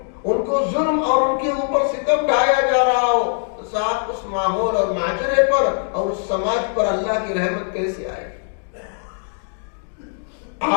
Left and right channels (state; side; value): silent; right; digital silence